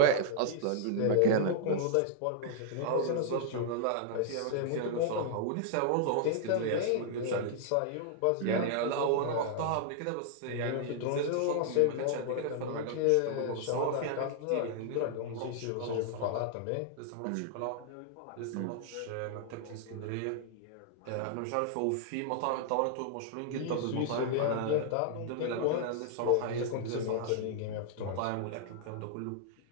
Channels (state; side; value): different; both; correlation -0.01